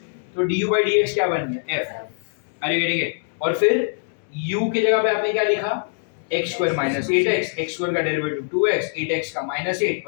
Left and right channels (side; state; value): right; silent; digital silence